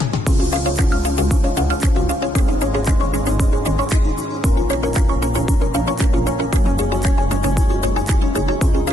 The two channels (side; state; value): both; normal; correlation 0.78